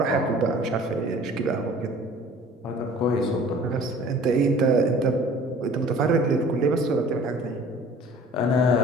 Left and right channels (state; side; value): normal; both; correlation 0.48